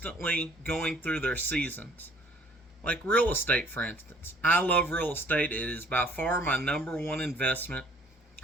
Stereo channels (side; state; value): both; normal; correlation 0.57